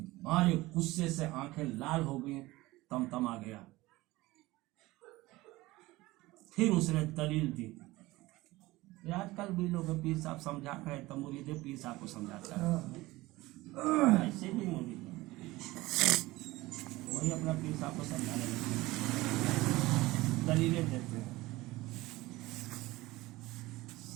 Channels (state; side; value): quieter; left; 19.5 dB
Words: मारे गुस्से से आंखें लाल हो गई, तमतमा गया। फिर उसने दलील दी। आजकल भी लोग पीर साहब समझा रहे तो मुरीद पीर साहब को समझाता है, ऐसे भी मुरीद वही अपना पीर साहब को समझाने लगते, दलीलें देते हैं।